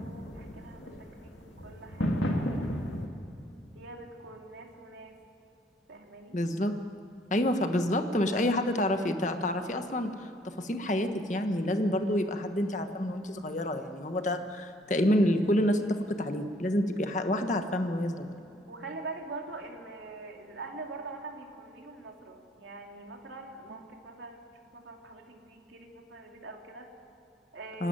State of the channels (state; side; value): normal; both; correlation 0.63